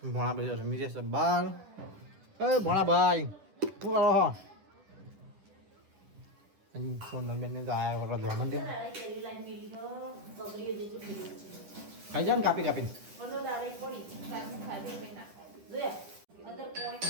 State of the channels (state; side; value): late; left; 10 ms